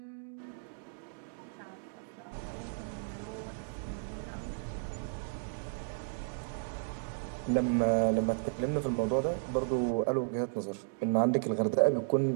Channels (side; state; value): left; silent; digital silence